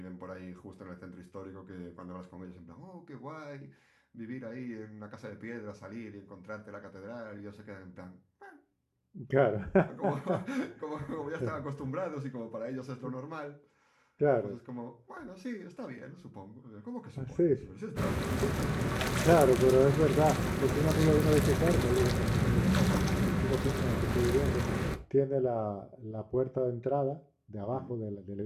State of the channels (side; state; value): both; identical; correlation 1.00